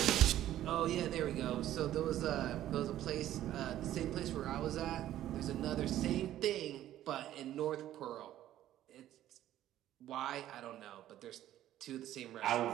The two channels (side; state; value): left; quieter; 12.9 dB